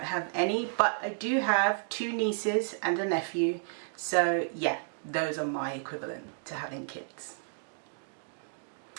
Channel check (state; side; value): silent; left; digital silence